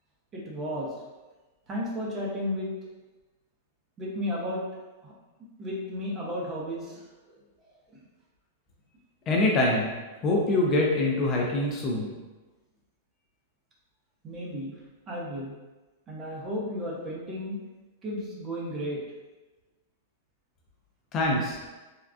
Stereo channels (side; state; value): both; normal; correlation -0.03